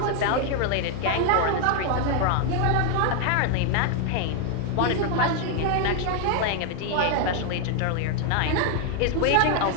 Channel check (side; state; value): both; different; correlation 0.00